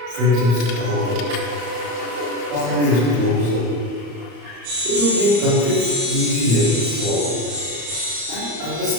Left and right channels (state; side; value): late; left; 34 ms